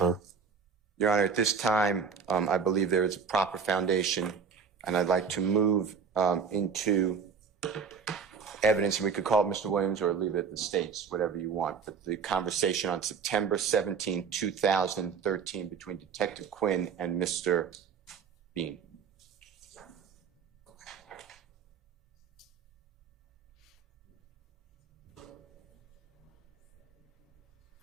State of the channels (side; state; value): left; quieter; 6.1 dB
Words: Your Honor, at this time, I believe there is a proper foundation, and I'd like to move into evidence, and we could call it Mr. Williams or leave it at the States, whatever you want. But the conversation on September 17, 2013 between Detective Quinn and Mr. Bean.